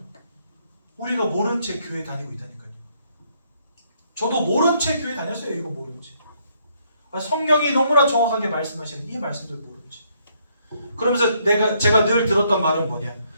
우리가 모른 채 교회 다니고 있다니까요. 저도 모른 채 교회 다녔어요. 이거 모른 채. 성경이 너무나 정확하게 말씀하시는 이 말씀들 모른 채. 그러면서 제가 늘 들었던 말은 뭐냐?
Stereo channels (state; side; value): inverted; both; correlation -0.71